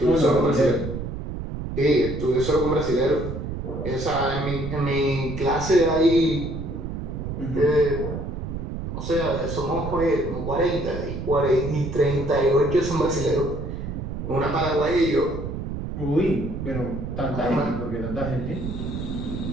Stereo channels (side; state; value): right; noise; rumble, 6 dB below the sound